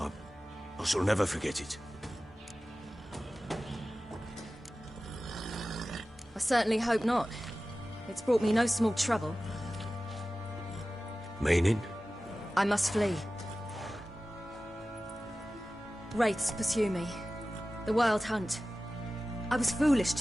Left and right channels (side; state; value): both; normal; correlation 0.96